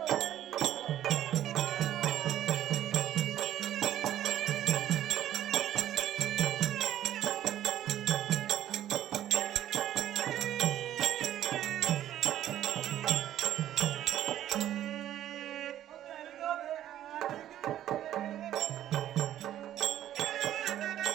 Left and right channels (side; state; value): left; quieter; 12.0 dB